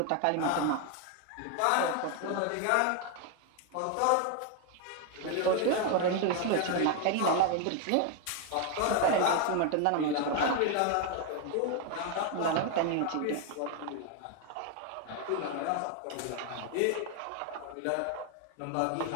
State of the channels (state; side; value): different; both; correlation 0.01